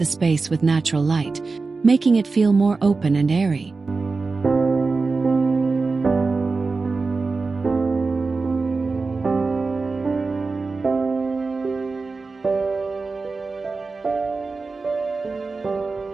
space with natural light, making it feel more open and airy.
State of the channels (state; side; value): quieter; left; 4.0 dB